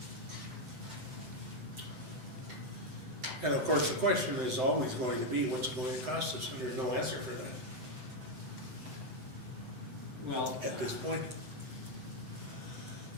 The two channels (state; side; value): late; left; 7.9 ms